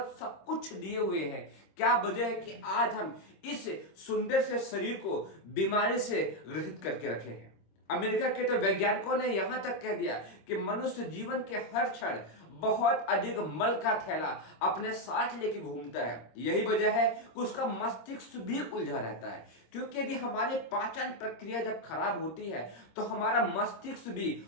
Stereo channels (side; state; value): right; late; 26 ms